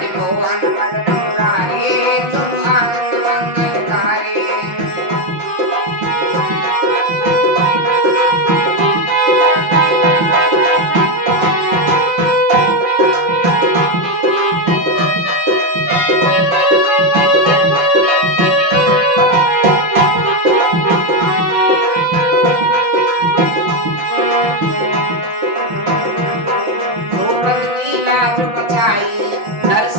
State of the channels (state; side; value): late; left; 5.7 ms